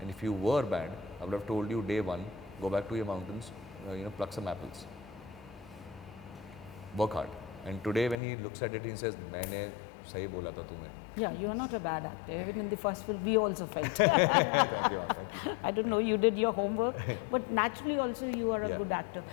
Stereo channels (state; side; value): drops out; right; at 8.2 s